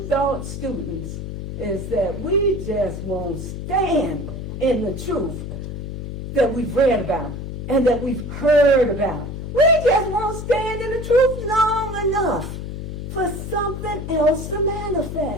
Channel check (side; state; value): left; noise; hum, 7 dB below the sound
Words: Thought students is that we just won't stand in the truth that we've read about and that we've heard about. We just won't stand in the truth long enough for something else to